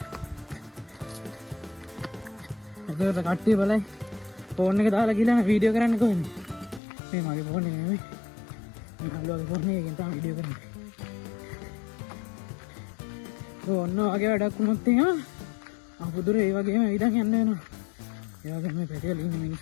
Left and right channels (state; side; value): drops out; right; at 6.8 s